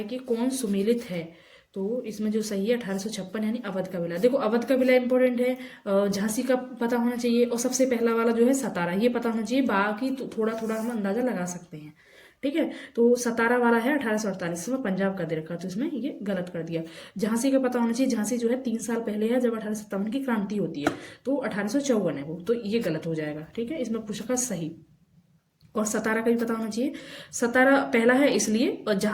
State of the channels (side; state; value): both; identical; correlation 1.00